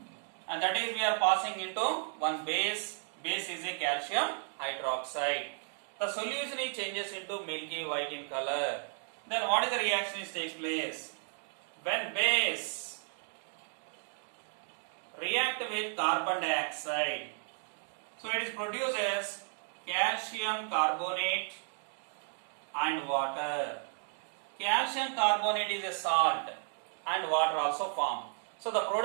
and that is we are passing into one base. Base is a calcium hydroxide. The solution changes into milky white in color. Then what is the reaction that takes place? When base react with carbon dioxide, so it is produces calcium carbonate and water. Calcium carbonate is a salt and water also form. So the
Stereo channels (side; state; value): left; silent; 55 dB below the other